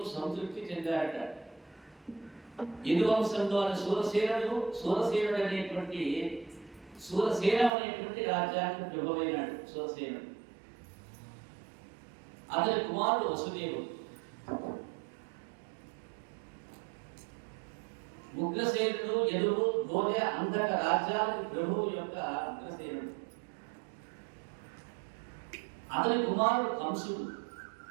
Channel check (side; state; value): left; drops out; at 7.7 s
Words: సంతృప్తి చెందారట. యదువంశంలో సూరసేనుడు అనేటువంటి సూరసేన అనేటువంటి రాజ్యానికి ప్రభువైనాడు సూరసేనుడు. అతని కుమారుడు వసుదేవుడు. ఉగ్రసేనుడు యదువు గోధ అంధక రాజ్యాలకు ప్రభువు యొక్క ఉగ్రసేనుడు. అతని కుమారుడు కంసుడు.